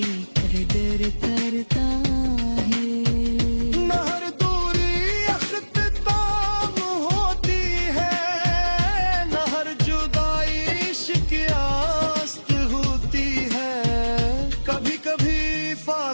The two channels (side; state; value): both; inverted; correlation -1.00